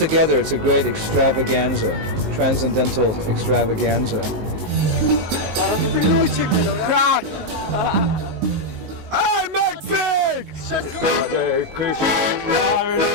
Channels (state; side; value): late; left; 19 ms